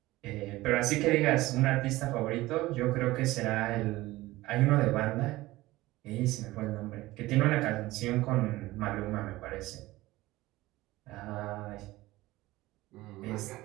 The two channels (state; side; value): quieter; left; 18.3 dB